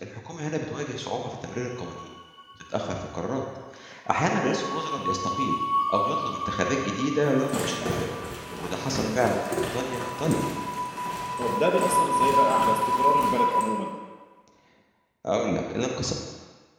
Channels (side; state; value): both; identical; correlation 1.00